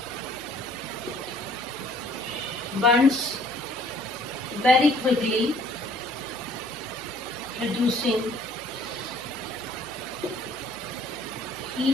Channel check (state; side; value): noise; right; hum, 23 dB below the sound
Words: burns very quickly, producing